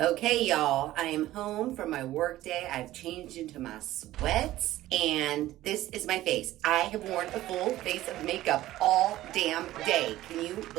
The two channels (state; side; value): quieter; left; 15.2 dB